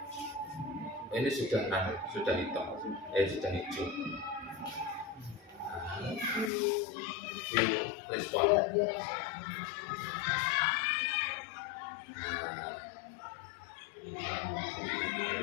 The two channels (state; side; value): drops out; right; at 6.5 s